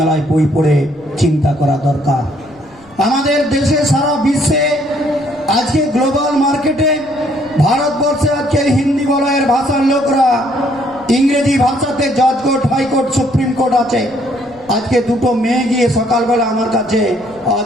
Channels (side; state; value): left; noise; rumble, 27 dB below the sound